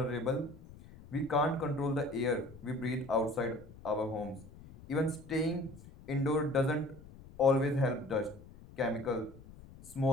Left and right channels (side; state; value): left; noise; rumble, 19 dB below the sound